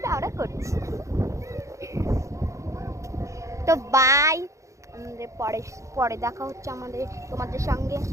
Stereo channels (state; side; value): late; left; 0.15 ms